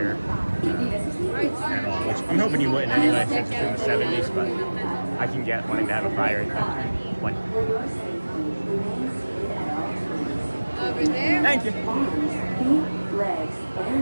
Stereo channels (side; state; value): both; inverted; correlation -1.00